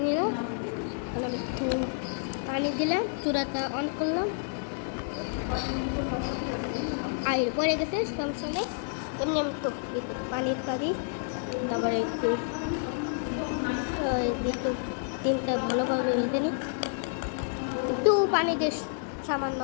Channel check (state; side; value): silent; right; 58 dB below the other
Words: নিলাম। এখন আমি একটু পানি দিলাম, চূড়াটা অন করলাম, আয়ের পরে গেছে সমস্যা নেই। এমনি আমি তো পানির পানি, তারপরে একটু ডিমটা ভালোভাবে রেখে নিই, একটু পানি দিয়ে সামান্য